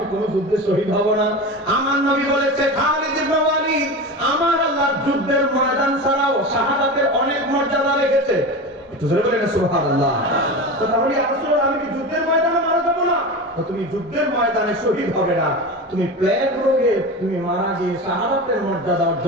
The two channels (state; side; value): normal; both; correlation 0.27